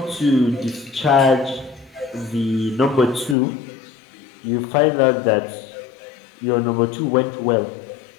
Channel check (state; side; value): drops out; right; at 3.4 s